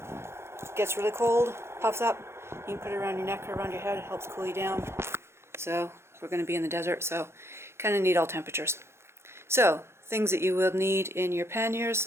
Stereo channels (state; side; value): late; left; 0.12 ms